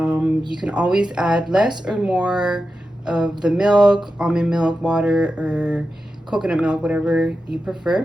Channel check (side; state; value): both; normal; correlation 0.91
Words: can always add less or more of the milk, almond milk, water, or coconut milk, whatever you